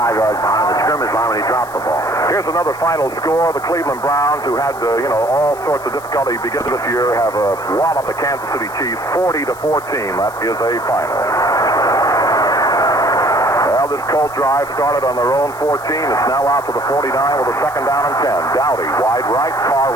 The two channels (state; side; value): noise; left; hiss, 20 dB below the sound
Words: yards behind the scrimmage line when he dropped the ball. Here's another final score. The Cleveland Browns, who had all sorts of difficulty beginning this year, have walloped the Kansas City Chiefs 40-14. That is a final. Well, this Colt drive started on their own 14. It's now out to the 49 with a second down and 10. Dowdy wide right, Carr